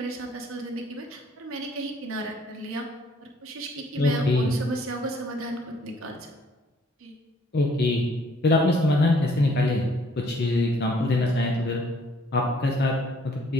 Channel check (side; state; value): both; normal; correlation 0.62